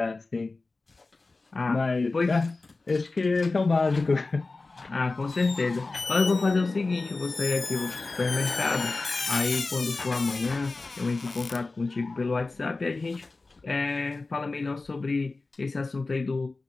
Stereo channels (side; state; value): right; quieter; 3.6 dB